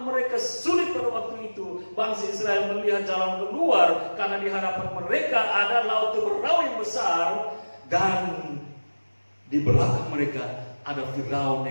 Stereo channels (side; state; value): both; inverted; correlation -1.00